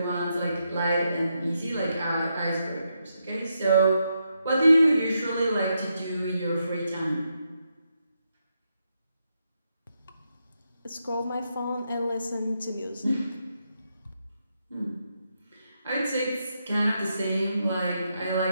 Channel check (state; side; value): inverted; both; correlation -0.82